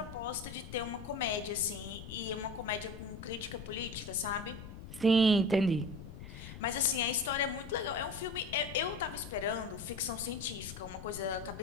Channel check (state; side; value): noise; left; rumble, 12 dB below the sound